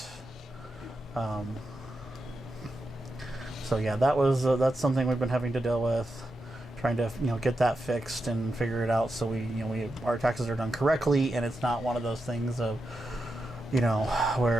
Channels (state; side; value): normal; both; correlation 0.87